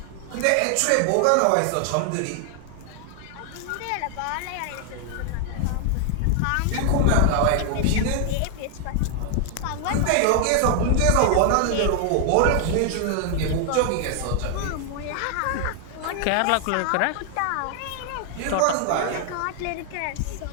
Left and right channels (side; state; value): both; different; correlation 0.00